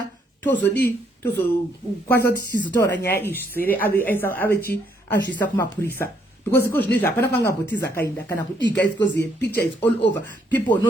tozodi tozokwanisa kuti tizotaura nyaya izvi sere ave chi azvisa kumapurisa because iko zvinezvi hapana kwangambotiza akaenda kana kudiga because the picture is all over, people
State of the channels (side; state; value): both; normal; correlation 0.71